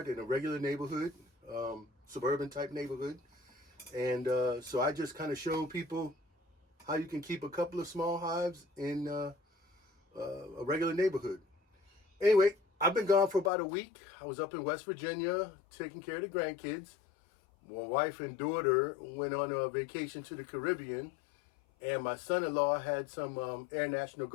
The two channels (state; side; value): drops out; right; at 13.5 s